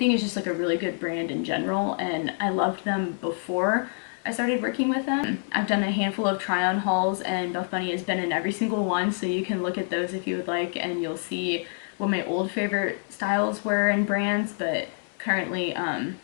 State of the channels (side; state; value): right; silent; 60 dB below the other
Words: it's just like a really good brand in general, and I loved them before I started working with them. I've done a handful of try-on hauls, and Buff Bunny has been in every single one, so you can look at those if you would like, and you'll see what my old favorite styles were and brands. But currently